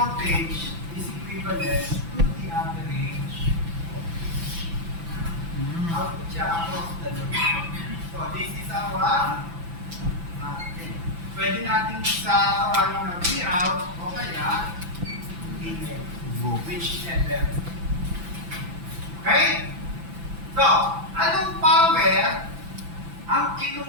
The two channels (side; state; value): left; late; 6.0 ms